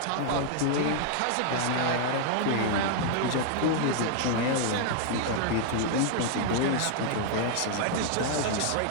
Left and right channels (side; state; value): both; different; correlation 0.00